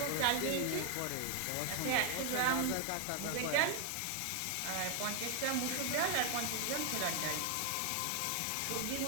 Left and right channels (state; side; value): different; both; correlation 0.00